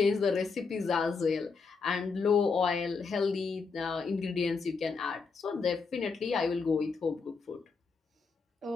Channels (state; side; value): quieter; right; 4.8 dB